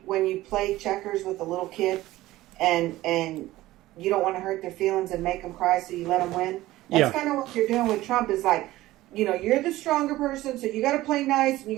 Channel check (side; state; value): left; quieter; 16.7 dB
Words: when you play checkers with a little kid, and you don't want to hurt their feelings and make them cry, so you let them win. That's kind of what you're doing with Trump. Is like, you know, you're the stronger person, so you got to play nice and you